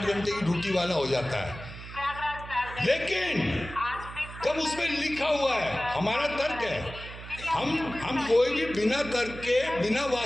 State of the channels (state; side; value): noise; right; hum, 13 dB below the sound